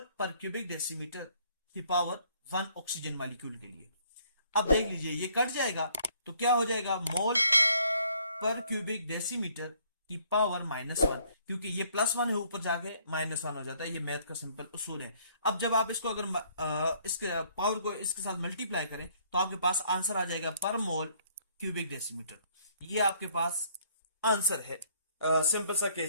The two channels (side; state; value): both; inverted; correlation -0.63